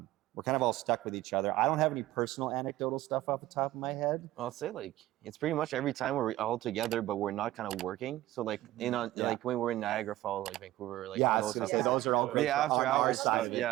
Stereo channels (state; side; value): quieter; left; 15.8 dB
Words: we're kind of all stuck with each other. I don't have any personal anecdotal stuff off the top of my head. I'll say like it's pretty much every time we're all together, but we're not kind of working. So like like when we're in Niagara Falls, like Vancouver, like Yeah, I all was those gonna stuff. say those are all great. The after on our hours side